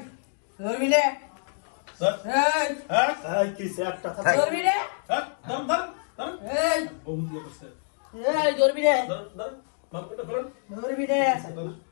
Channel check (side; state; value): right; silent; digital silence